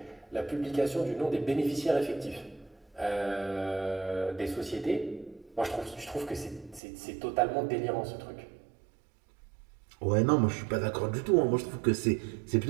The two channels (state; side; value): drops out; left; at 6.8 s